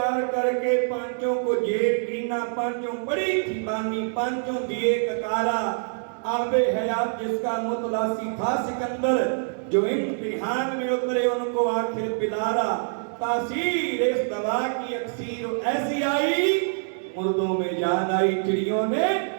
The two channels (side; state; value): left; silent; digital silence